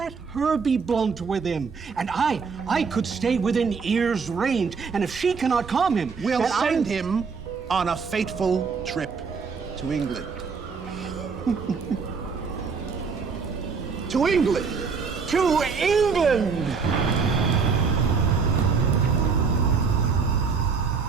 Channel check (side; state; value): left; quieter; 5.3 dB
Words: her be blunt with him. And I could stay within ear's range. And if she cannot calm him, We'll then send him on a fateful trip to England. To England! To England!